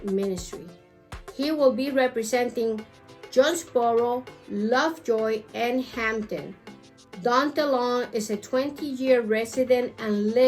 ministry. He will be representing Jonesboro, Lovejoy, and Hampton. Daunta Long is a 20-year resident and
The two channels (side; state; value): both; identical; correlation 1.00